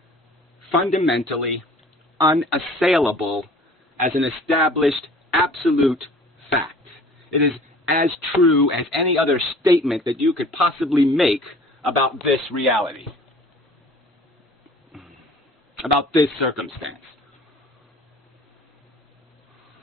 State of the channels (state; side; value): normal; both; correlation 0.49